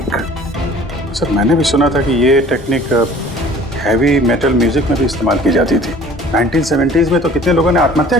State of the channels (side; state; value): both; normal; correlation 0.49